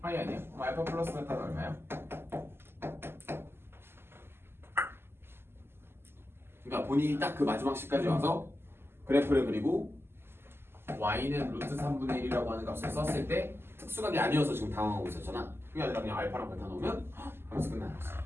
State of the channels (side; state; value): left; late; 0.12 ms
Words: 파이 아니야? 그럼 알파 플러스 베타가 얼마야? 그러니까 본인이 딱 그 마지막 시까지 와서 그래프를 그리고 y는 루트 3분의 1이라고 하는 값을 썼을 때 특수각이 아니어서 지금 당황하고 있었잖아. 그게 아니라 그냥 알파랑 베타 넣으면 하면서 끝나는 거지.